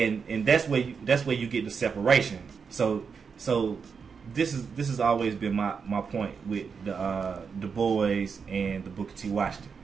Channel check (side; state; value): left; quieter; 5.9 dB